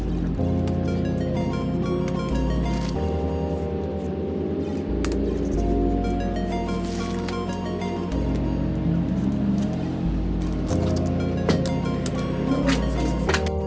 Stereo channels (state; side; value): identical; both; correlation 1.00